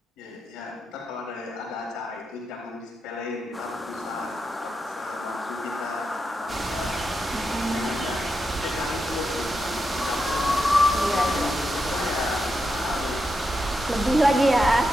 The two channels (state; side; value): normal; both; correlation 0.86